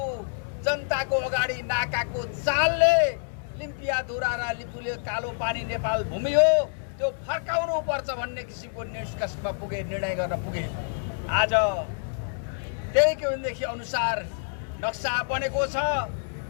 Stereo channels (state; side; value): silent; right; digital silence